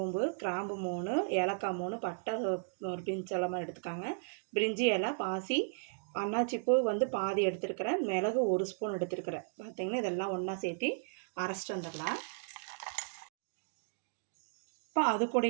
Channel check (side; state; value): left; silent; digital silence